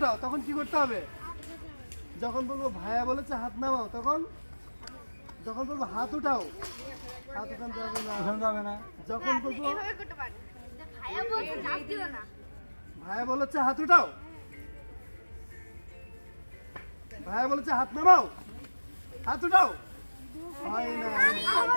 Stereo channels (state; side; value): inverted; both; correlation -1.00